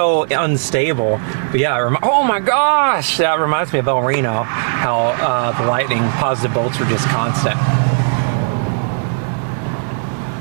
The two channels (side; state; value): left; silent; digital silence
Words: unstable. But yeah, oh my gosh, that reminds me of El Reno. How the lightning positive bolts were just constant.